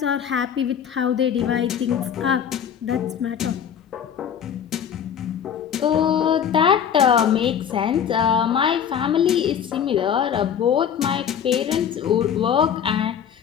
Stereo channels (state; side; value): quieter; right; 8.4 dB